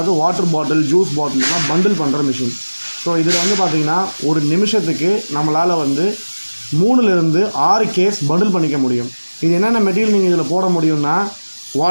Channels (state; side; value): inverted; both; correlation -1.00